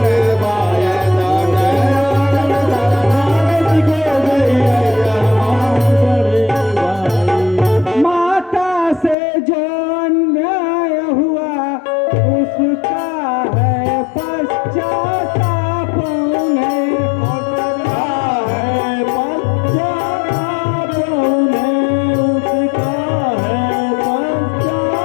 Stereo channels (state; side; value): drops out; right; at 9.2 s